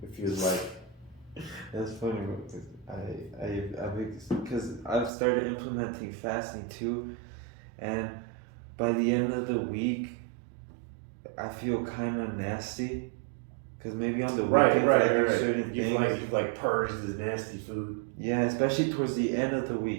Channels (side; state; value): left; drops out; at 5.1 s